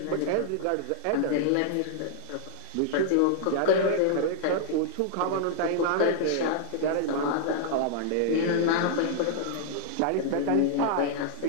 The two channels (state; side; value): different; both; correlation -0.01